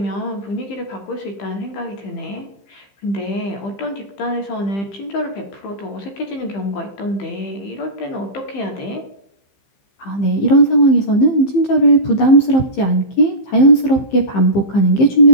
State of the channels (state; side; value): late; right; 15 ms